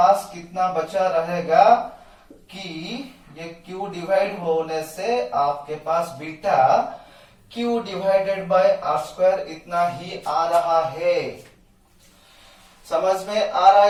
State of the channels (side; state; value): both; identical; correlation 1.00